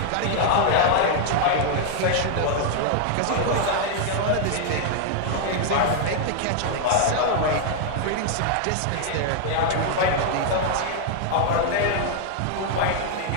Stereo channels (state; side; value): different; both; correlation 0.00